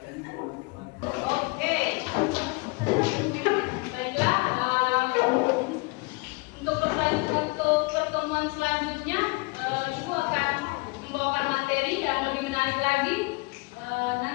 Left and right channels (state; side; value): quieter; right; 28.0 dB